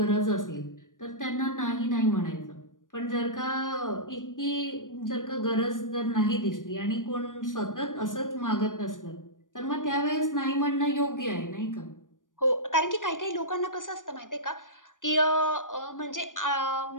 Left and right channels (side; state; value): right; late; 0.88 ms